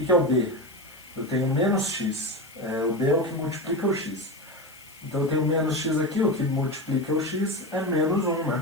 é o b? Eu tenho menos x. O b é o que multiplica o x. Então eu tenho menos x aqui, o que multiplica o x é menos 1,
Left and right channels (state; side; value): noise; left; hiss, 24 dB below the sound